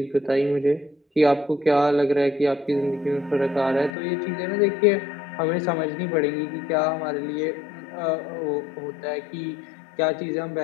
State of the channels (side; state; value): right; drops out; at 4.0 s